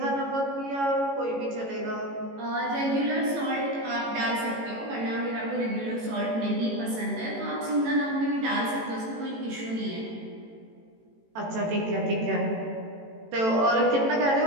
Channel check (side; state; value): left; late; 18 ms